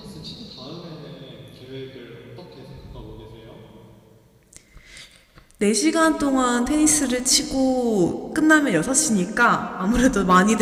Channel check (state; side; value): identical; both; correlation 1.00